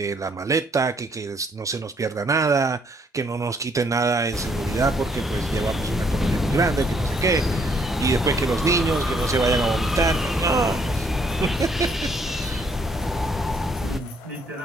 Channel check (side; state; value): both; normal; correlation 0.67